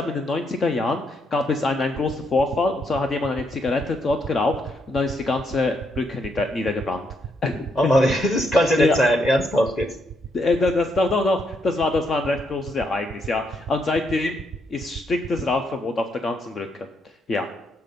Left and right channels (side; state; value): both; normal; correlation 0.76